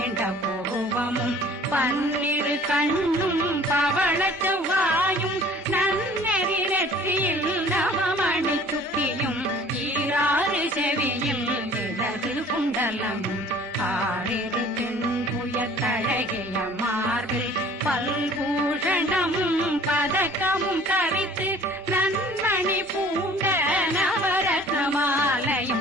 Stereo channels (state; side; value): normal; both; correlation 0.50